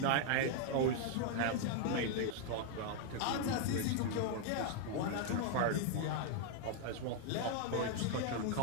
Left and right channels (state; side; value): different; both; correlation 0.00